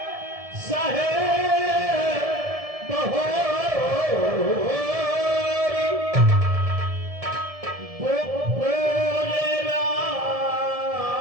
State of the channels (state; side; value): late; left; 1.7 ms